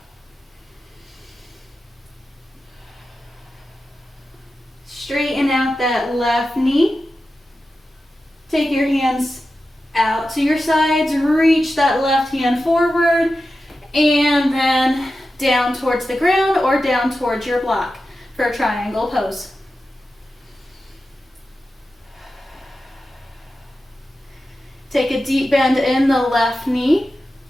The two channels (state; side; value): normal; both; correlation 0.92